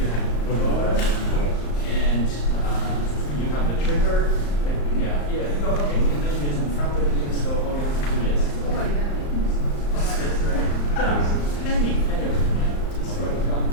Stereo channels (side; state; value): right; late; 35 ms